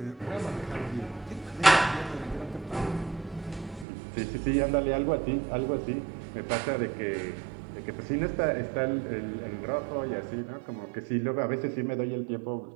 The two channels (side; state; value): left; drops out; at 3.9 s